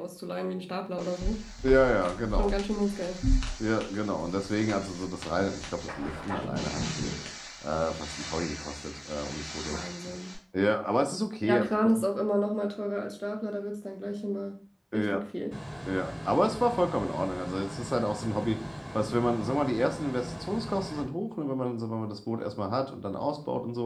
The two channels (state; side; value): identical; both; correlation 1.00